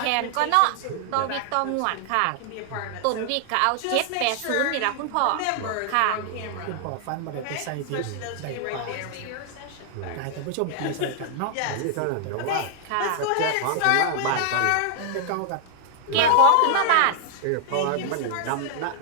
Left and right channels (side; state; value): both; different; correlation 0.00